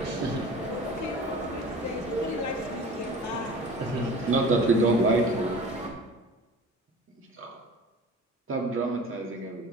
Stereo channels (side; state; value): both; normal; correlation 0.41